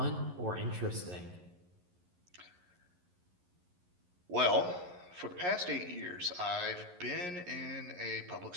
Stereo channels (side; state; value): left; late; 11 ms